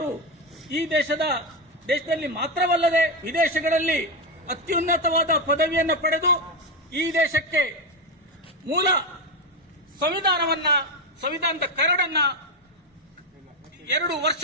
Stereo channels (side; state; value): both; normal; correlation 0.11